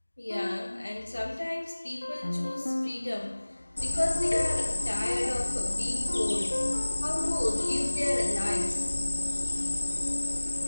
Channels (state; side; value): inverted; both; correlation -1.00